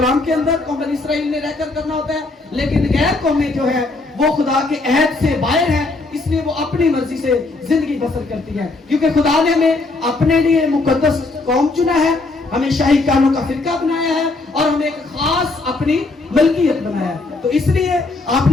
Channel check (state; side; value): quieter; right; 3.3 dB